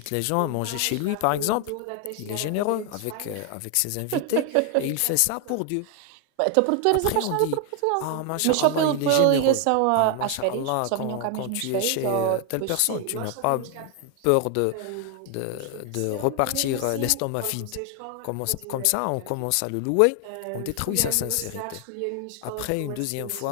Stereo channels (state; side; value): different; both; correlation 0.00